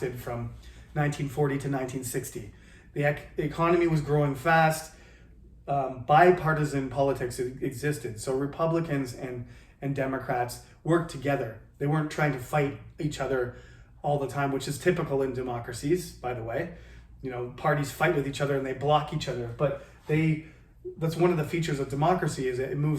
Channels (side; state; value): both; identical; correlation 1.00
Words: from 1940 to 1960. The economy was growing fast. Bipartisan politics existed. So Republicans and Democrats worked together. They weren't trying to fight each other all the time, which is typical in democracies, by the way. Parties fight with each other and they block each other, but that's one of the features of democracy, is it